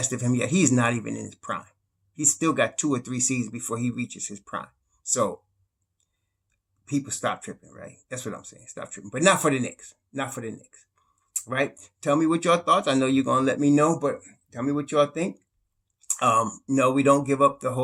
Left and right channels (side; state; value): both; identical; correlation 1.00